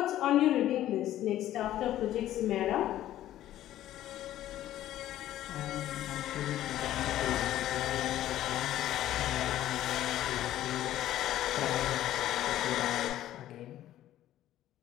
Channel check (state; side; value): quieter; right; 13.2 dB